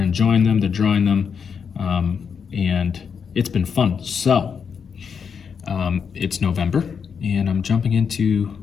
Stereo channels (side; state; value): right; quieter; 6.6 dB